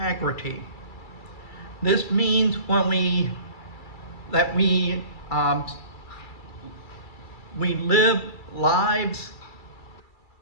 This means we live lives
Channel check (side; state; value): right; late; 2.3 ms